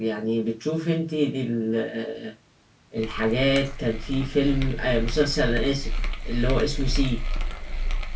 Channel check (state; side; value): identical; both; correlation 1.00